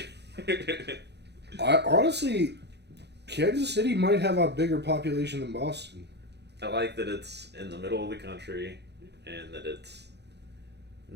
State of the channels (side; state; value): left; late; 0.49 ms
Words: Honestly, Kansas City might have a bigger population than Boston. I like that it's in the middle of the country and that it's